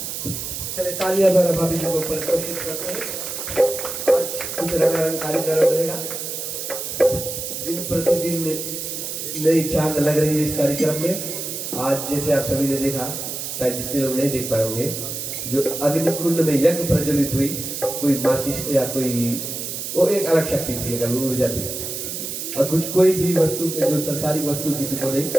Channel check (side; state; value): right; noise; hiss, 5 dB below the sound